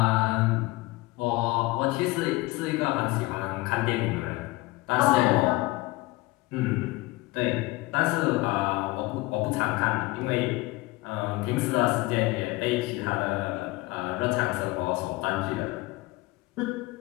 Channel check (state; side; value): quieter; right; 21.0 dB